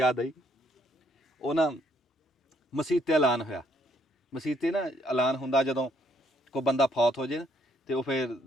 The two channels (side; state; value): both; normal; correlation 0.69